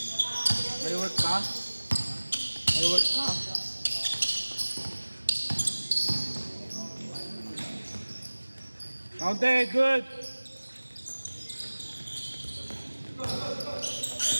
May work ka? May work ka? Counted, good!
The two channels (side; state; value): both; inverted; correlation -1.00